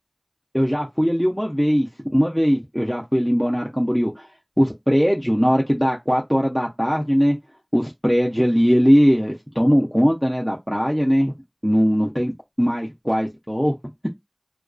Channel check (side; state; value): both; identical; correlation 1.00